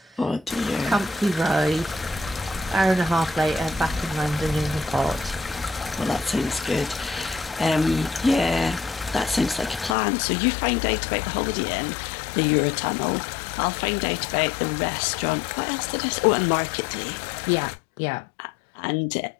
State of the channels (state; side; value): drops out; right; at 10.0 s